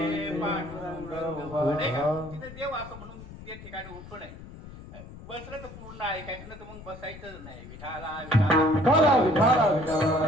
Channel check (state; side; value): noise; left; rumble, 15 dB below the sound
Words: का, तिथे देव असं म्हणून त्या ठिकाणी उठू नये. बसलं तर पूर्ण ऐकायचं, ना तर मग बसायचंच नाही. विठाला